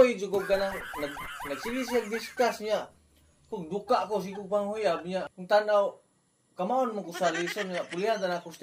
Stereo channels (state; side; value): identical; both; correlation 1.00